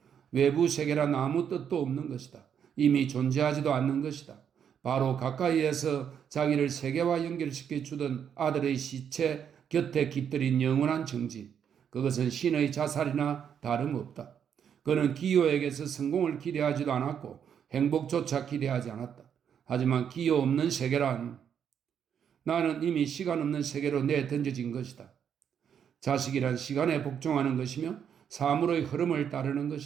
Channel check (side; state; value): left; quieter; 8.2 dB